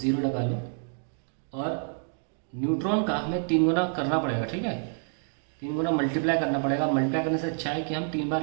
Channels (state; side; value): silent; left; 59 dB below the other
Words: लगा लो. और न्यूट्रॉन का हमें 3 गुना करना पड़ेगा. ठीक है. 3 गुना मल्टीप्लाई करना पड़ेगा. मल्टीप्लाई करने से अच्छा है कि हम 3